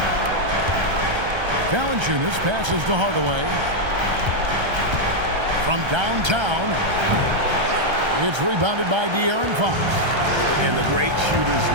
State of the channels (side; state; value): left; late; 1.3 ms